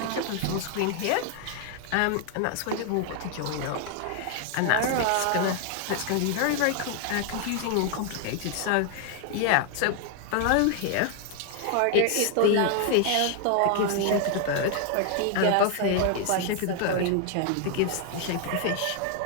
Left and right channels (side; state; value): both; different; correlation 0.00